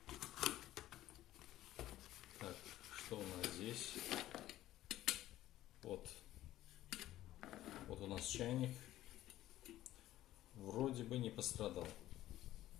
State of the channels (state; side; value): quieter; right; 14.4 dB